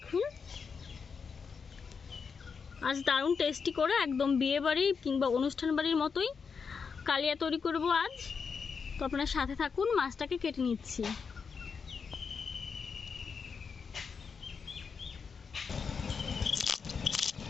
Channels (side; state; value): right; quieter; 5.7 dB